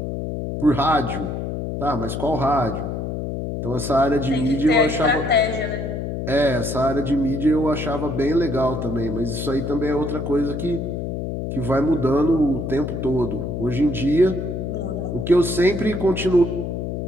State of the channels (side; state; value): left; noise; hum, 4 dB below the sound